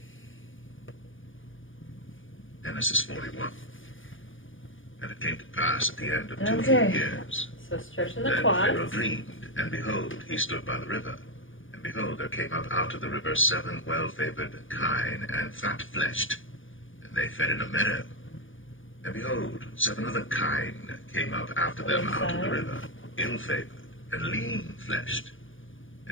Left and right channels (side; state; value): right; late; 0.57 ms